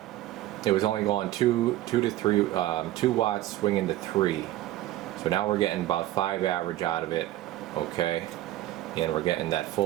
it was only going 2 to 3, 2 watts swinging to 3. So now we're getting about 5 average out of it, okay? And we're getting that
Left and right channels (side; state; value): left; quieter; 14.9 dB